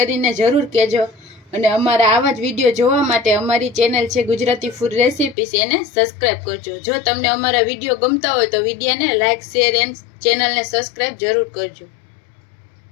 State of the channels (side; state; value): right; drops out; at 5.4 s